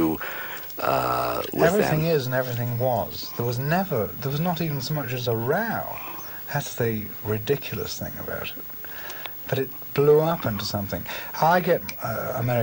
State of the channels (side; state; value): both; identical; correlation 1.00